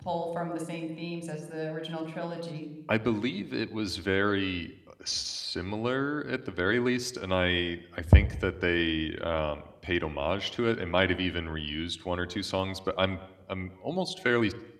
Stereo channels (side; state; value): both; identical; correlation 1.00